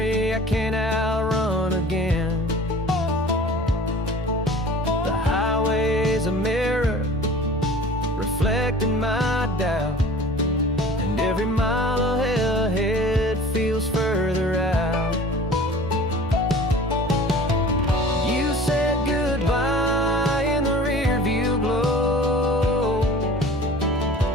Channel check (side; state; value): both; normal; correlation 0.43